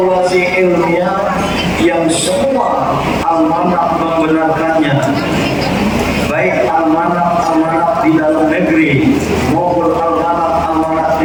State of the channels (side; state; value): both; identical; correlation 1.00